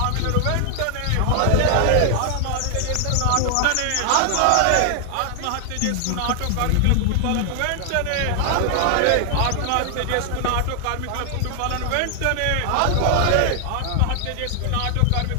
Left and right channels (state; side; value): different; both; correlation 0.00